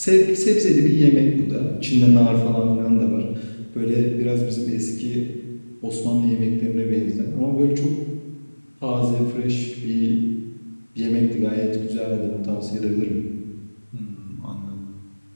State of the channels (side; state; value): both; inverted; correlation -1.00